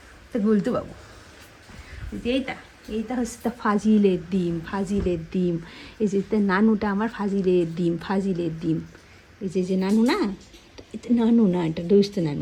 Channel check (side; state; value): both; identical; correlation 1.00